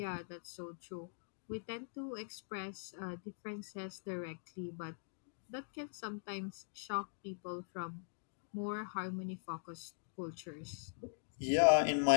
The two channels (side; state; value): right; silent; digital silence